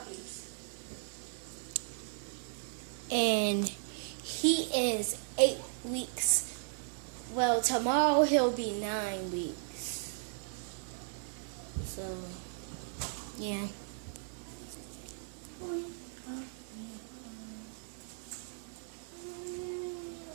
And he is 8 weeks. Well, tomorrow he'll be 9 weeks. So, yeah.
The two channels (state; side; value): silent; left; digital silence